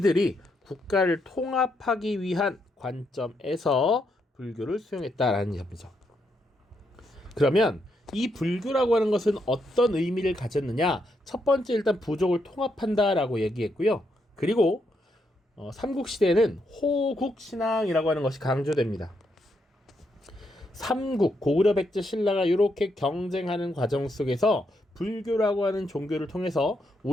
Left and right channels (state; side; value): normal; both; correlation 0.79